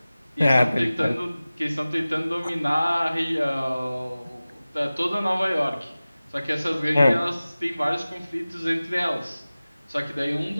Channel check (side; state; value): both; inverted; correlation -0.97